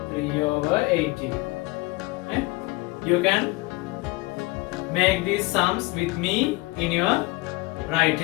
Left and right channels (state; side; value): quieter; right; 23.0 dB